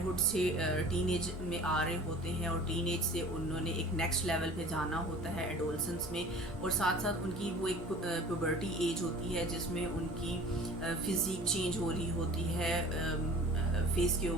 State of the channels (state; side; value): normal; both; correlation 0.43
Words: سے ٹین ایج میں آ رہے ہوتے ہیں, اور ٹین ایج سے انہوں نے ایک نیکسٹ لیول پہ جانا ہوتا ہے ایڈولسنس میں, اور ساتھ ساتھ ان کی وہ ایک پیوبرٹی ایج ہوتی ہے جس میں ان کی فزیک چینج ہو رہی ہوتی ہے, فیس کے